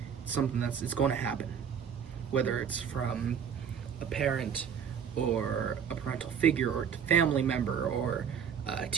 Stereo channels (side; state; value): left; quieter; 7.7 dB